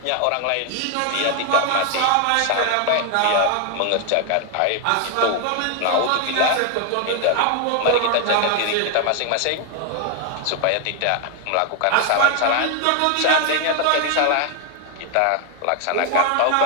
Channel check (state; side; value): different; both; correlation 0.00